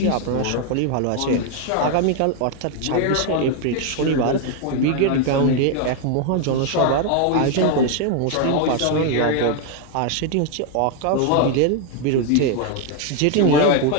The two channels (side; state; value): both; different; correlation 0.01